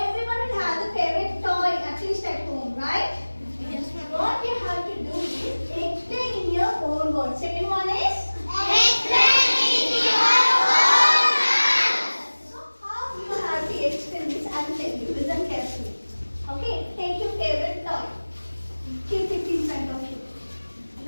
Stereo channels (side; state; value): both; inverted; correlation -1.00